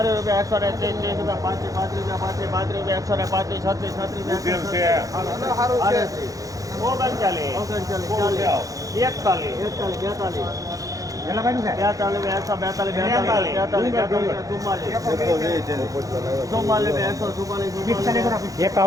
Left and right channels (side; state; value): left; late; 0.17 ms